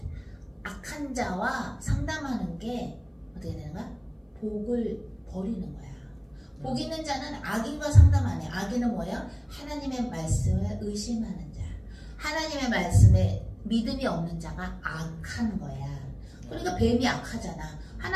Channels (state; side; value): identical; both; correlation 1.00